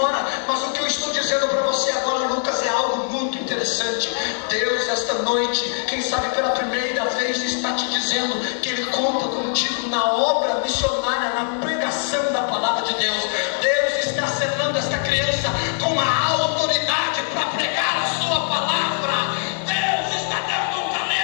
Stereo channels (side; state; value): right; silent; 64 dB below the other